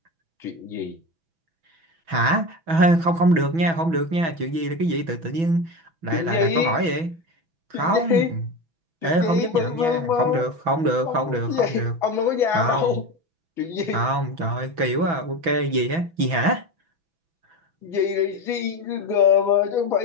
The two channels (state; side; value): late; left; 6.1 ms